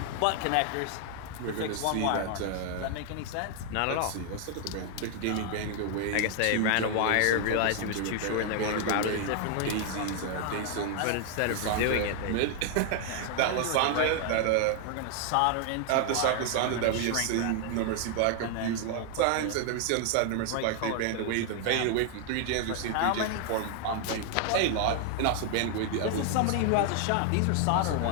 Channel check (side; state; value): both; different; correlation 0.00